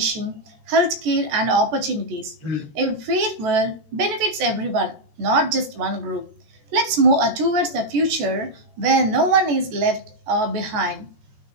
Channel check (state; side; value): late; left; 14 ms